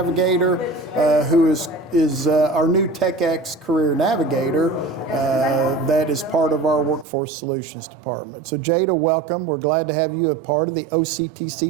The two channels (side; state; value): left; drops out; at 7.1 s